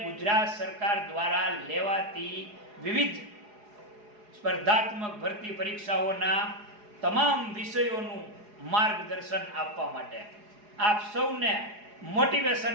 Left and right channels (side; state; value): left; late; 4.8 ms